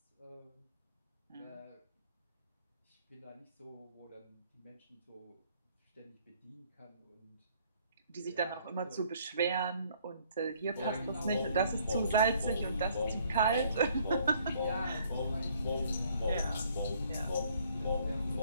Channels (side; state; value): both; inverted; correlation -0.63